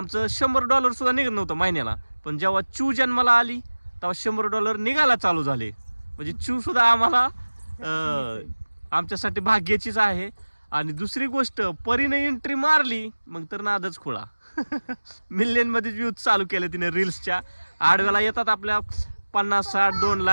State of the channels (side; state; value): both; inverted; correlation -1.00